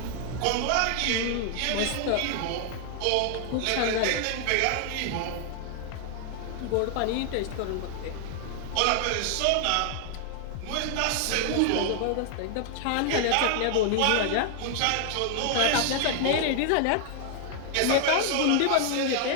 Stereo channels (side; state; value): both; different; correlation 0.00